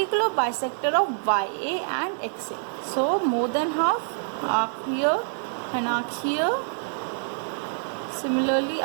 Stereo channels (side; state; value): left; silent; 61 dB below the other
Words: bisector of YA and XA. So more than half, arc here and arc here. Similarly,